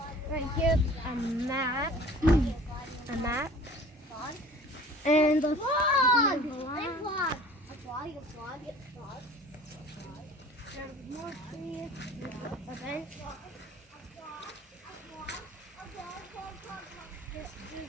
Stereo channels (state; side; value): normal; both; correlation 0.46